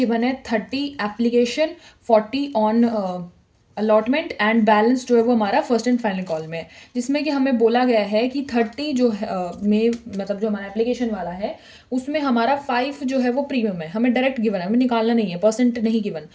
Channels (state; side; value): identical; both; correlation 1.00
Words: है 30 application, 40 on allotment, and balance जो है वो हमारा फर्स्ट एंड फाइनल कॉल में है। जिसमें कि हमें बोला गया है कि 30 जो है में, मतलब जो हमारा एप्लीकेशन वाला है उसमें हमारा 5 जो है वो प्रीमियम है। हमें डायरेक्ट गिवन है, हमें निकालना नहीं है, परसेंट नहीं गिवन।